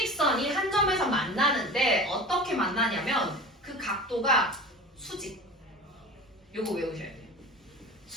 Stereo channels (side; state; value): both; normal; correlation 0.35